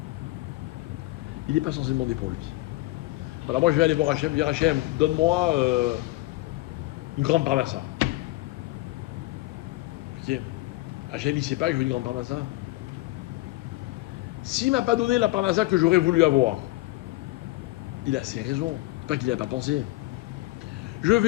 Il n'est pas censé demander pour lui. Voilà, moi je vais aller voir Hachem, dire Hachem, donne-moi une grande parnassa. Ok. Hachem, il ne sait pas que je veux une grande parnassa. S'il ne m'a pas donné la parnassa que j'aurais voulu avoir, il a ses raisons. C'est pas qu'il n'a pas pensé. Je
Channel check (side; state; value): right; quieter; 19.7 dB